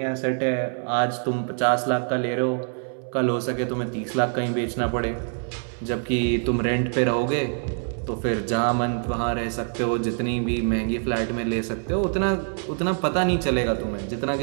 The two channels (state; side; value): silent; left; 55 dB below the other